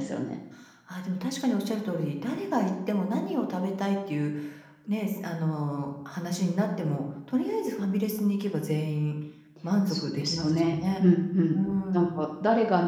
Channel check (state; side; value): identical; both; correlation 1.00